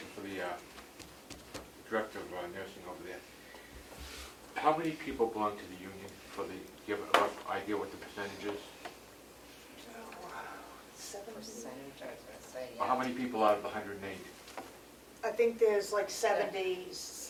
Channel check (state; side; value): identical; both; correlation 1.00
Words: for the director of nursing over there. How many people belong to the union for the, do you have a rough idea what the percentage is? Percentage, I was gonna say, Or how many people out of the 108? I think there's like 70,